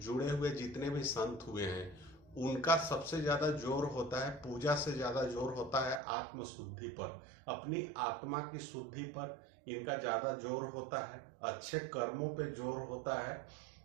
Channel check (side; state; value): left; drops out; at 6.0 s